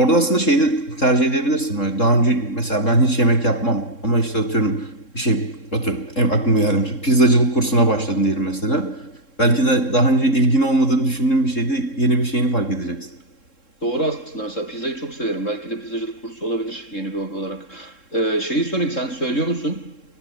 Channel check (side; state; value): right; late; 3.7 ms